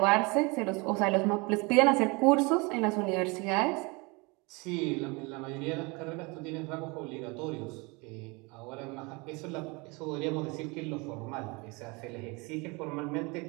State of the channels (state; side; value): quieter; left; 27.8 dB